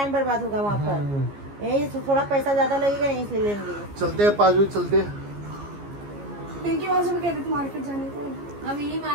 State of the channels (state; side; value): late; left; 15 ms